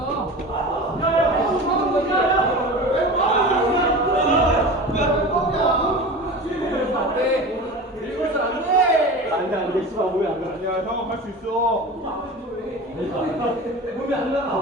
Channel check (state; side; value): normal; both; correlation 0.33